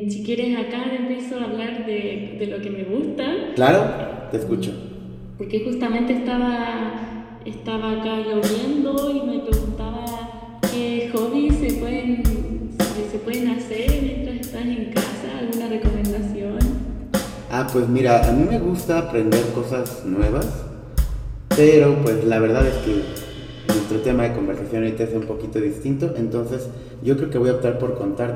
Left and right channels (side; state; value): both; identical; correlation 1.00